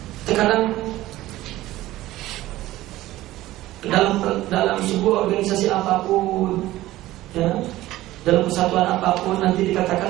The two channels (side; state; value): left; quieter; 16.2 dB